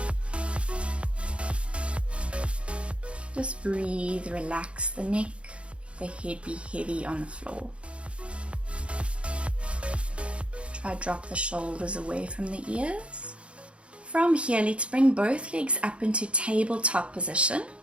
Just breathe, relax the neck, the head be heavy on the floor. Try drop the shoulders away from the ears. From here, let's bring both legs up into tabletop position.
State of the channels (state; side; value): late; left; 0.059 ms